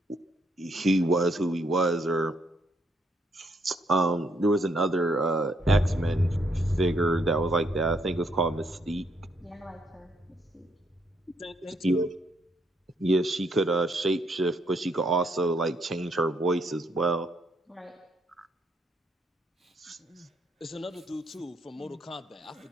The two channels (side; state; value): both; normal; correlation 0.73